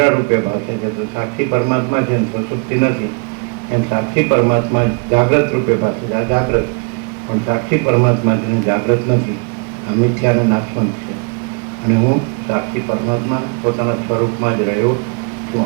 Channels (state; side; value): quieter; left; 36.5 dB